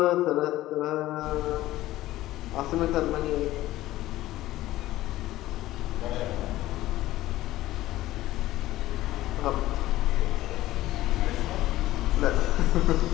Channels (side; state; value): right; quieter; 15.8 dB